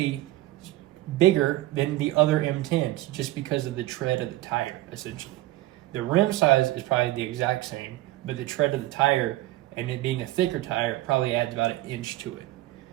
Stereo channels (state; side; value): quieter; left; 16.8 dB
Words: bigger than the other M10s just because of the tread of the tire, essentially. The rim size is probably the exact same, but the tread of the tire and it being a thicker tire probably adds about 1 inch to it.